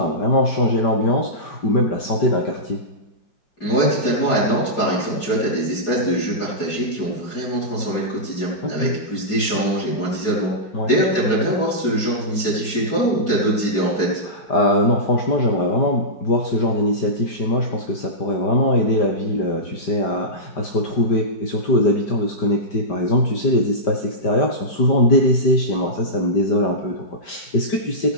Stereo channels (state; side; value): late; right; 4.8 ms